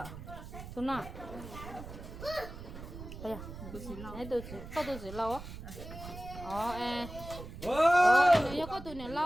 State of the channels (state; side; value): noise; right; rumble, 12 dB below the sound